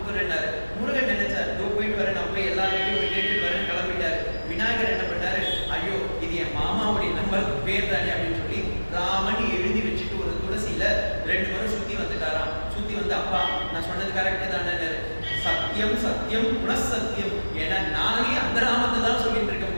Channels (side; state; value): both; inverted; correlation -1.00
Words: முருகன் நினைச்சார், போயிட்டு வரேன், நான் போய் எல்லாருக்கும் போய் கேட்டுட்டு வரேன், கிளம்பிட்டாரு. விநாயகர் என்ன பண்ணாரு, ஐயோ இது என் மாமாவுடைய நம்பருக்கு பேர் தானே அப்படின்னு சொல்லி ராமன் எழுதி வச்சுட்டு ஒரு துளசியில 2 முறை சுத்தி வந்துட்டாராம். சுத்தி வந்து, அப்பா நான் சொன்னது கரெக்ட் தானே, சத்தியம் சத்தியம் புனசத்தியம், ஏன்னா நானே அந்த நாமத்தை தான் சொல்லிட்டு இருக்கும்